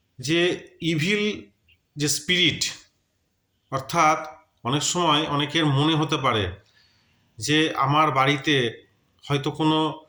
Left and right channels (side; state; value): both; identical; correlation 1.00